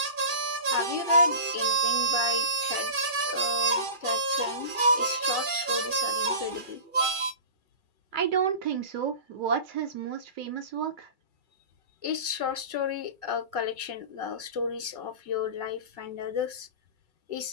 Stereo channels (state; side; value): late; left; 2.4 ms